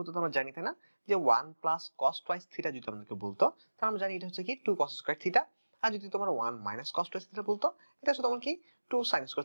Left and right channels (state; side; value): inverted; both; correlation -1.00